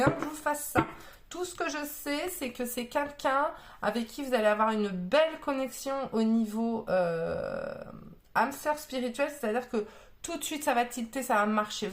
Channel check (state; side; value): identical; both; correlation 1.00